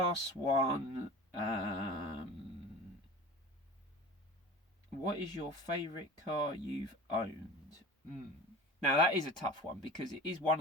one, what is your favourite car you've owned? Now that is a tough one, because it is one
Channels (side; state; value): both; normal; correlation 0.37